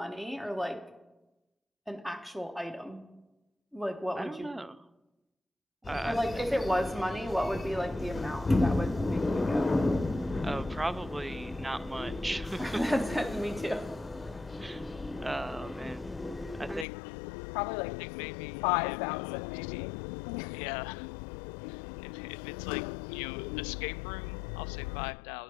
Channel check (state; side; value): drops out; right; at 16.9 s